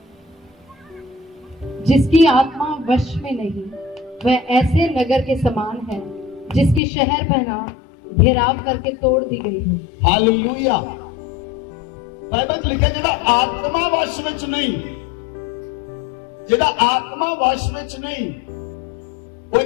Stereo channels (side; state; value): right; drops out; at 6.8 s